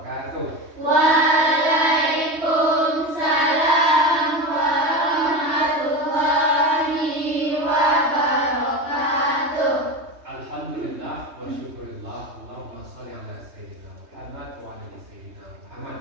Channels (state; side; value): late; left; 3.2 ms